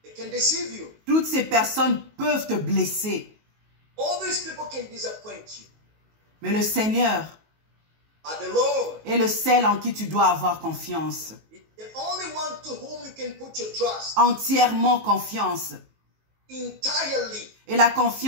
They can deceive you. Toutes ces personnes peuvent te blesser. All these people can disappoint you. Mais le Seigneur But the Lord est le seul en qui tu dois avoir confiance. is the only one to whom you can put your trust Entièrement confiance. entirely. Et la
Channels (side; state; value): left; late; 19 ms